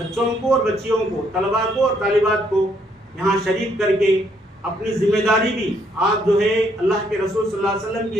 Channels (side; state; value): both; normal; correlation 0.70